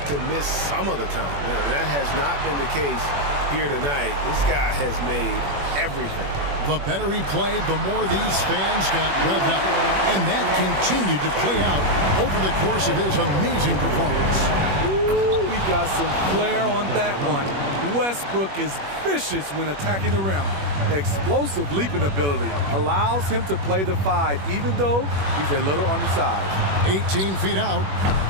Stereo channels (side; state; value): left; late; 21 ms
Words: to miss some of the time. That has not been the case here tonight. This guy has made everything. The better he played, the more these fans got revved up. And that continued to play out over the course of his amazing performance. Ooh, we got some flair on that one. Westbrook is vicious when attacking the rim. Explosive leaping ability allows him to play the 5, even though he's a little undersized. 18 feet out.